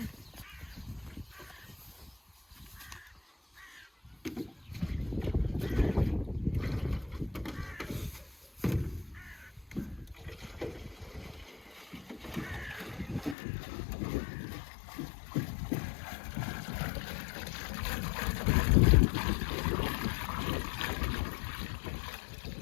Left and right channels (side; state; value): right; drops out; at 13.4 s